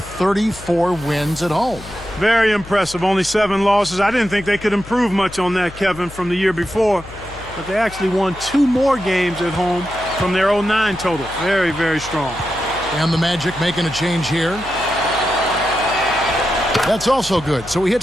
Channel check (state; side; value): noise; left; hum, 16 dB below the sound